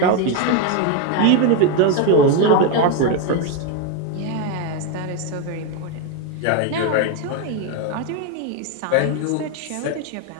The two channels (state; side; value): different; both; correlation 0.02